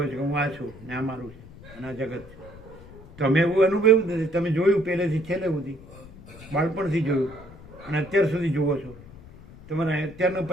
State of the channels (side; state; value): left; noise; rumble, 19 dB below the sound